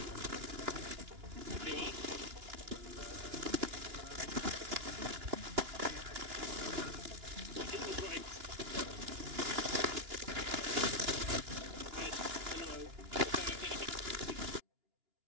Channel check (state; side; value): late; left; 2.9 ms